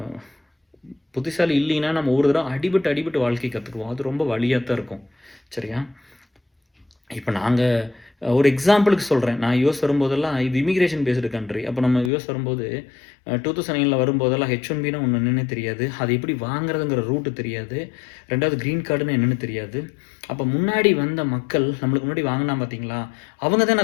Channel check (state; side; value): drops out; right; at 12.1 s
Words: புத்திசாலி இல்லைன்னா நம்ம ஒரு தடவை அடிபட்டு வாழ்க்கை கற்றுக்குவோம். அது ரொம்ப வலியாக தான் இருக்கும். சரியா? இப்போ நாங்கள் ஒரு எக்ஸாம்பிளுக்கு சொல்கிறேன். நான் யுஎஸ் வரும்போதெல்லாம் இது இமிக்ரேஷன் பேஸ்டு கண்ட்ரி. அப்போ நம்ம யுஎஸ் வரும்போது 2009 வரும்போதெல்லாம் H1Bனா ஒன்று என்னென்னு தெரியாது. அது எப்படி வாங்குறதுங்கிற ரூட்டு தெரியாது. 2வது க்ரீன் கார்டுன்னு என்னென்னு தெரியாது. அப்போ முன்னாடி வந்த மக்கள் நம்மளுக்கு முன்னாடி வாங்கினா பார்த்தீங்களா, அவங்க